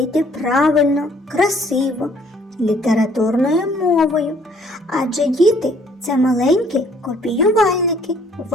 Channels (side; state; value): both; normal; correlation 0.61